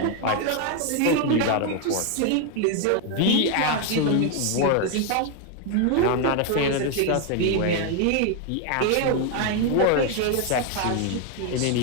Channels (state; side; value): different; both; correlation 0.01